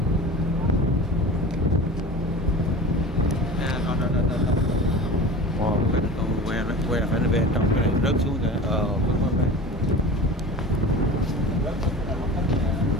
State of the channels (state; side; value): normal; both; correlation 0.36